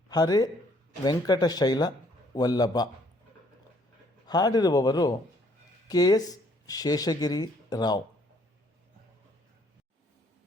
ಹರೇ ವೆಂಕಟಶೈಲ ವಲ್ಲಭ. ಹಾಡಿರುವವರು KS ಶೇಷಗಿರಿ ರಾವ್.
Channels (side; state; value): both; normal; correlation 0.64